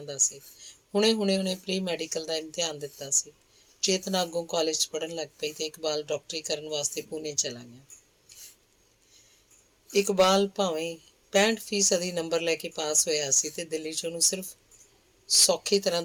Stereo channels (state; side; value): identical; both; correlation 1.00